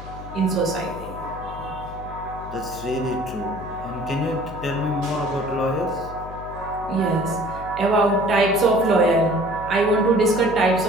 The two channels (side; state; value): left; noise; hum, 13 dB below the sound